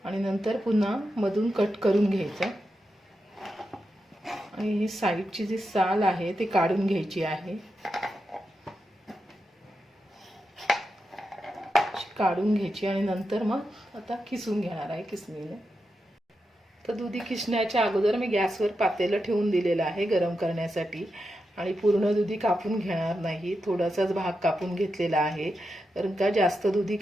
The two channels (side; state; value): both; normal; correlation 0.88